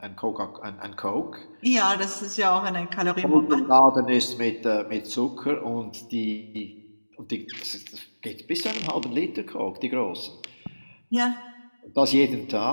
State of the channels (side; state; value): both; inverted; correlation -1.00